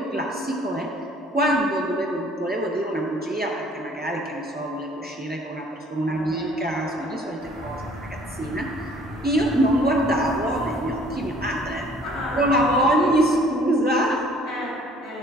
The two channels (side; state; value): both; normal; correlation 0.56